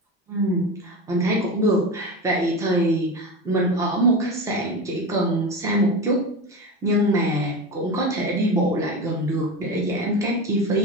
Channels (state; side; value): normal; both; correlation 0.25